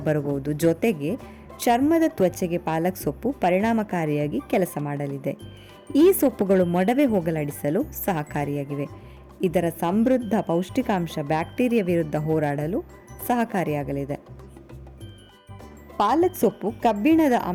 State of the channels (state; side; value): identical; both; correlation 1.00